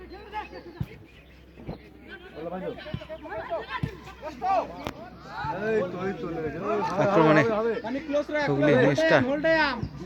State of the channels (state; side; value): identical; both; correlation 1.00